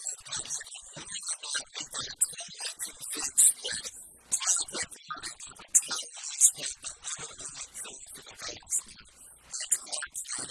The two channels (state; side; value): identical; both; correlation 1.00